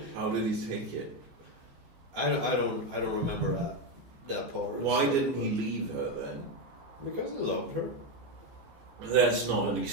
How did he take it? I don't remember that part. Why didn't he leave her then? Because I loved her. That's not an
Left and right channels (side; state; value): left; late; 15 ms